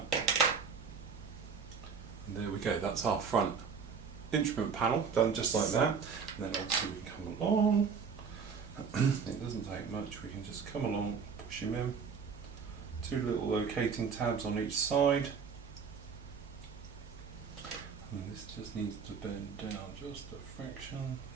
and there we go, that's our front instrument panel done just like that. And then obviously we can come along, it doesn't take much, we can just come along, push him in, two little locating tabs on each side, and this just needs to bend down just a fraction,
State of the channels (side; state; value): left; quieter; 6.0 dB